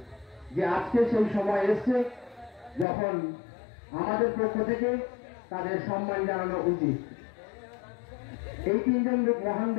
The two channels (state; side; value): drops out; right; at 2.9 s